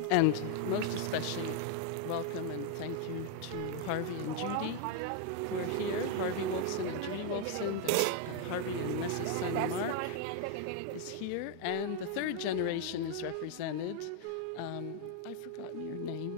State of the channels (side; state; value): both; different; correlation 0.01